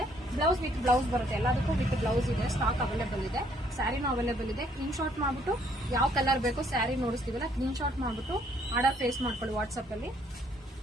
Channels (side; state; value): both; normal; correlation 0.66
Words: ಬ್ಲೌಸ್ ವಿತ್ ಬ್ಲೌಸ್ ಬರುತ್ತೆ, ಎಲ್ಲದಕ್ಕೂ ವಿತ್ ಬ್ಲೌಸ್ ಇದೆ. ಸ್ಟಾಕ್ ಅವೈಲೇಬಲ್ ಇದೆ, ಸ್ಯಾರಿನೂ ಅವೈಲೇಬಲ್ ಇದೆ. ಸ್ಕ್ರೀನ್ ಶಾಟ್ ಮಾಡ್ಬಿಟ್ಟು ಯಾವ ಕಲರ್ ಬೇಕೋ ಸ್ಯಾರಿ ನೋಡಿಸ್ತೀವಲ್ಲ, ಸ್ಕ್ರೀನ್ ಶಾಟ್ ಮಾಡ್ಬಿಟ್ಟು ಆರ್ಡರ್ ಫೇಸ್ ಮಾಡ್ಕೊಳ್ಳಿ ವಾಟ್ಸ್ಆಪ್ ಅಲ್ಲಿ.